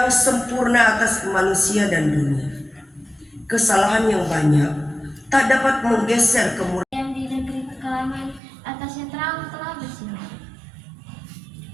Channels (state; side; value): drops out; left; at 8.4 s